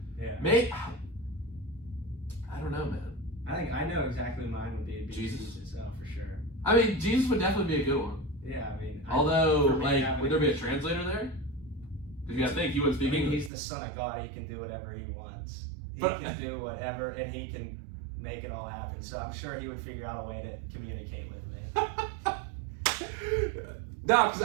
Yeah. Maybe I don't know, man. I think I know exactly mine would be Jesus itself for sure. I mean, Jesus would definitely be a good one. Yeah, I mean. Although, like, would there be a translator there? Because you gotta think he wouldn't speak English. He's the Son of God. He can do whatever he wants. He can do whatever, and he can make it all happen. So I'm sure he would figure out a way to communicate with me. No, because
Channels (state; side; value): drops out; left; at 13.5 s